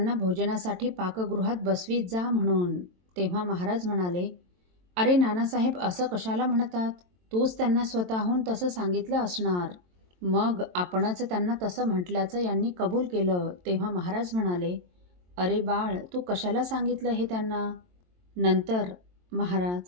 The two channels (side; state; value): left; late; 22 ms